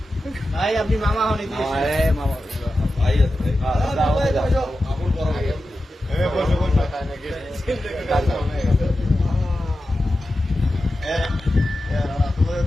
ভাই আপনি মামা হন মামা ভাই আছে তোমার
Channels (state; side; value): normal; both; correlation 0.92